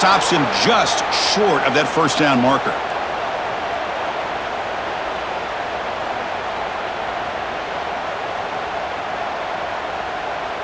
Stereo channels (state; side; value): identical; both; correlation 1.00